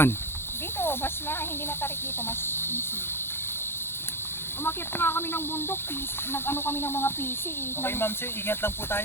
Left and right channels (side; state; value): right; late; 0.11 ms